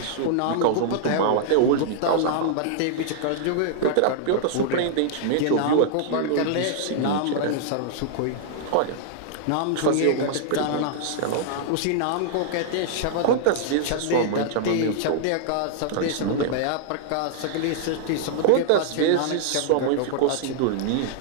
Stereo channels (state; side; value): different; both; correlation -0.01